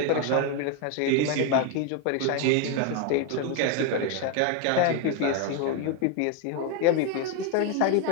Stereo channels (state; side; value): different; both; correlation 0.01